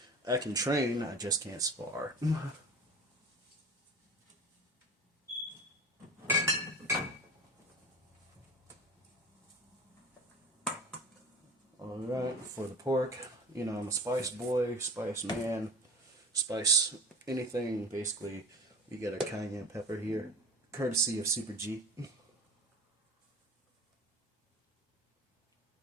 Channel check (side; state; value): both; normal; correlation 0.36